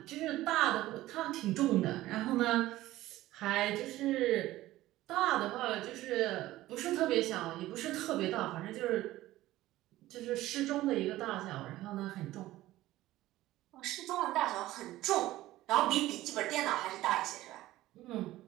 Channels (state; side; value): quieter; left; 16.1 dB